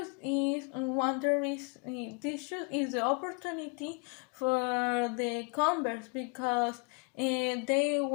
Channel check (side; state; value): right; quieter; 33.7 dB